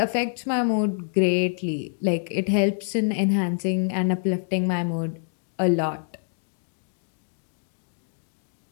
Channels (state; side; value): silent; right; digital silence